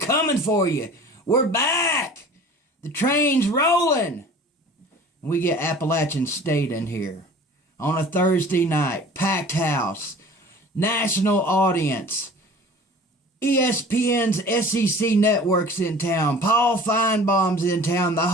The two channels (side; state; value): both; normal; correlation 0.44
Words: for you. We're back. The train's rolling. We get Appalachian State in here on a Thursday night, packed house, national audience, ESPN's SEC network's in town, Paul Feinbaum's in town, the